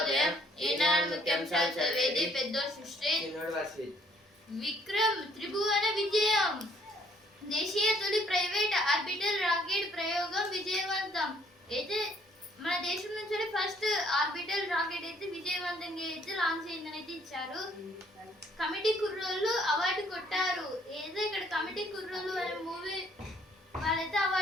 ఈనాడు ముఖ్యాంశాలు చదివేది పెద్ద సృష్టి. విక్రమ్ త్రిభువన విజయం. దేశీయ తొలి ప్రైవేట్ ఆర్బిటల్ రాకెట్ ప్రయోగం విజయవంతం. అయితే మన దేశం నుంచి ఫస్ట్ ఆర్బిటల్ రాకెట్ అయితే విజయవంతంగా అయితే లాంచ్ అయిందని అయితే ఇచ్చారు. కమిటీ కుర్రోళ్ళు అవార్డు కొట్టారు. ఏదో ఇక్కడ కమిటీ కుర్రోళ్ళు అనే మూవీ వాళ్ళైతే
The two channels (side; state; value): both; normal; correlation 0.64